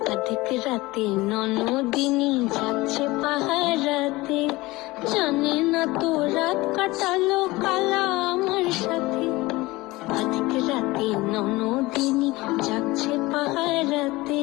অধিক রাতে ননদিনী যাচ্ছে পাহারাতে, জানে না তো রাত কাটালো কালা আমার সাথে। অধিক রাতে ননদিনী যাচ্ছে পাহারাতে,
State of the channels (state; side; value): quieter; right; 20.7 dB